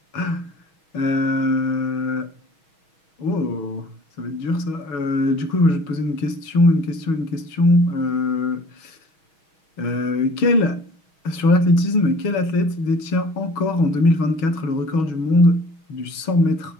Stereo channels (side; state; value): right; late; 6.3 ms